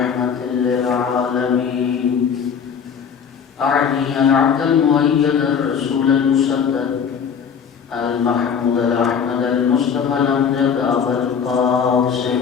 للعالمين أعني العبد المؤيد الرسول المسدد المحمود الأحمد المصطفى الأمجد أبا القاسم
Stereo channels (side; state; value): right; quieter; 6.9 dB